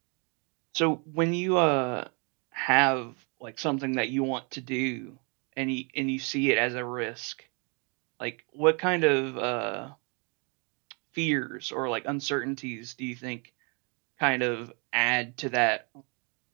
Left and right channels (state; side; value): quieter; left; 34.4 dB